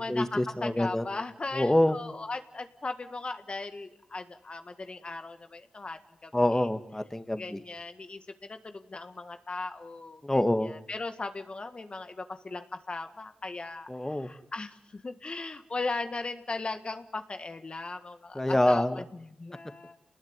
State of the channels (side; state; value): both; normal; correlation 0.97